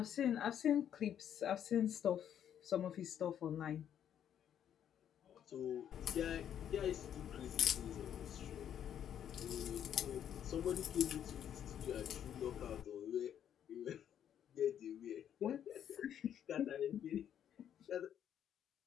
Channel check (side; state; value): right; quieter; 9.6 dB